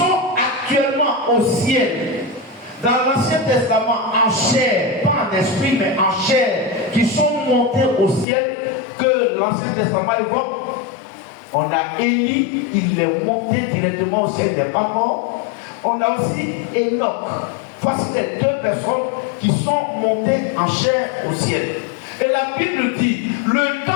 actuellement au ciel, dans l'Ancien Testament, en chair, pas en esprit, mais en chair, qui sont montés au ciel, que l'Ancien Testament évoque. On a Élie, il est monté directement au ciel, il n'est pas mort. On a aussi Enoch. Voici les deux personnes qui sont montées en chair au ciel. Et la Bible dit, le temps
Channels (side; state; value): right; drops out; at 8.2 s